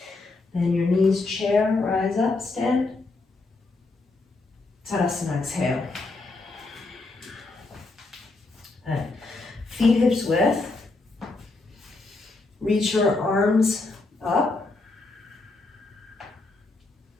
Bend your knees, chair, rise up, stand. Tadasana, exhale. And feet hips width. Reach your arms up.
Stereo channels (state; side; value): quieter; right; 3.4 dB